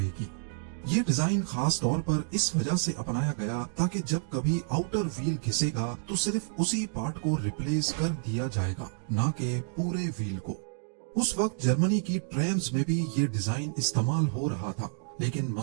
ये डिजाइन खास तौर पर इस वजह से अपनाया गया ताकि जब कभी आउटर व्हील घिसेगा तो सिर्फ उसी पार्ट को रिप्लेस कर दिया जाएगा, ना कि पूरे व्हील को। उस वक्त जर्मनी की ट्रैम्स में भी ये डिजाइन इस्तेमाल हो रहा था, लेकिन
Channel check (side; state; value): left; silent; digital silence